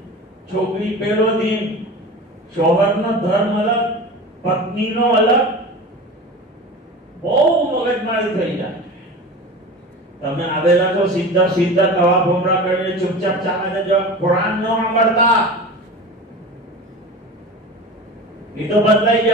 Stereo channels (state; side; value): normal; both; correlation 0.33